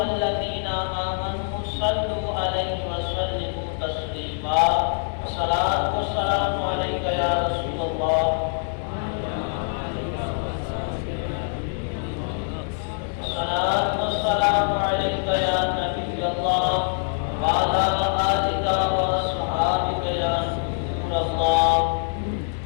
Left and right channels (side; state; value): right; silent; digital silence